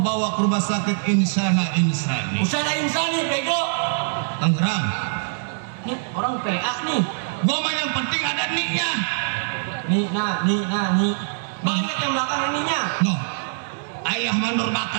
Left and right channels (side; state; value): left; silent; 63 dB below the other